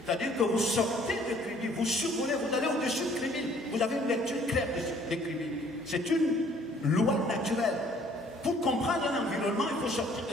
C'est-à-dire que vous sortez de Kribi, vous survolez, vous allez au-dessus de Kribi. Vous avez une lecture claire de Kribi. C'est une loi naturelle. Pour comprendre un environnement, il faut sortir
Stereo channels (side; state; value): both; normal; correlation 0.58